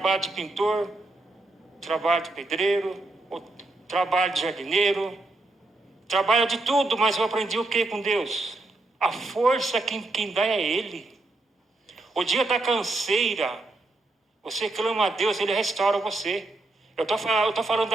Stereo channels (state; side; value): quieter; left; 3.0 dB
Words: de pintor, trabalho de pedreiro, trabalho de jardineiro, trabalho de tudo, mas eu aprendi o que com Deus? A força quem dá é Ele. O dia da canseira, você clama a Deus, Ele restaura você. Eu estou falando